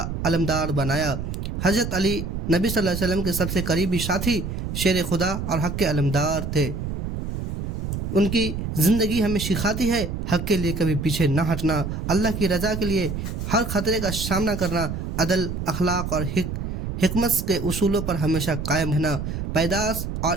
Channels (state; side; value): noise; right; rumble, 4 dB below the sound